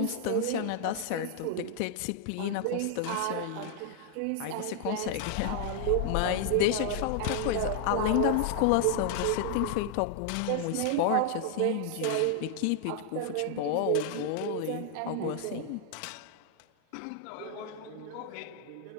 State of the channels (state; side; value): different; both; correlation 0.00